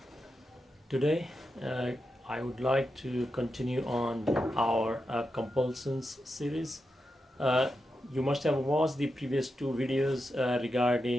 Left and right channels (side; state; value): both; normal; correlation 0.88